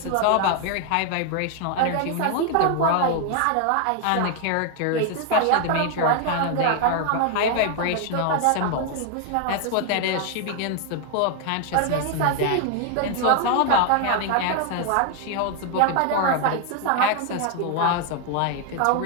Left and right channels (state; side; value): different; both; correlation 0.01